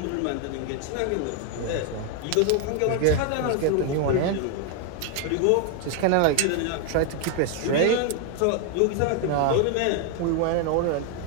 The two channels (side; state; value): both; different; correlation 0.01